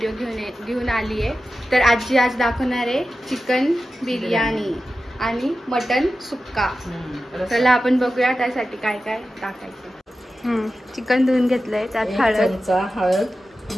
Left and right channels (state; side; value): normal; both; correlation 0.93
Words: घेऊन आली आहे। तर आजी आज दाखवणार आहे चिकन बिर्याणी आणि मटन सुक्का। चला आपण बघूया त्यासाठी काय काय टाकायचं। चिकन धुवून घेतलंय, त्यात हळद,